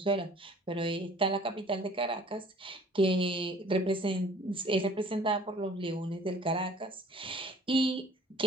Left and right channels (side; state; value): both; normal; correlation 0.52